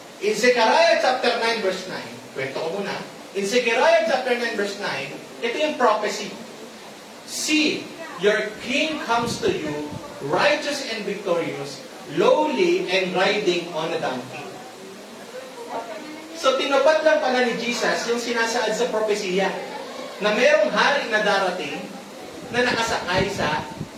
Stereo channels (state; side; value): identical; both; correlation 1.00